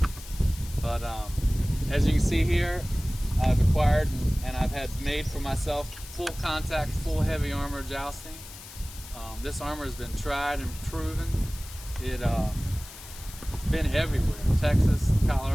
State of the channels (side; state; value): left; noise; hiss, 16 dB below the sound